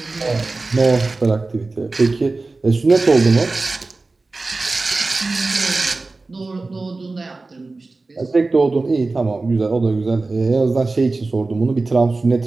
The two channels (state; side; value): quieter; left; 3.5 dB